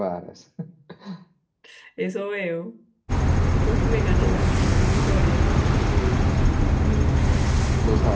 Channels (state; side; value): identical; both; correlation 1.00